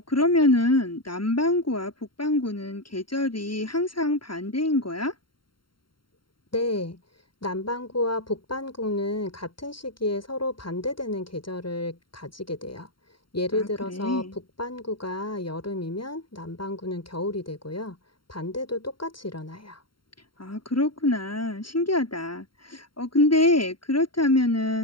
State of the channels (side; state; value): right; late; 0.73 ms